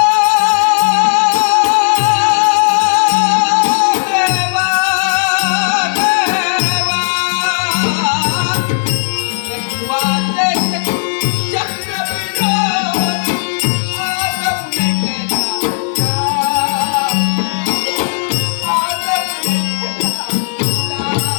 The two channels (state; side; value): silent; right; digital silence